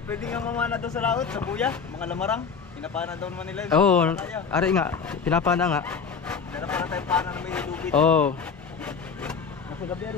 pwede nga mamana daw sa laot, sa buya, mga lamarang. Pinapana daw naman nila. Oo, ari nga, pinapana nga. Dala para tayo pana na may lubid. Oo, Nasa gabi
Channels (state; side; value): quieter; right; 5.9 dB